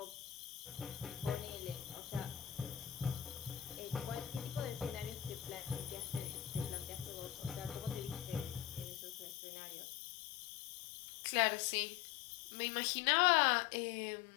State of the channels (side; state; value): right; drops out; at 9.3 s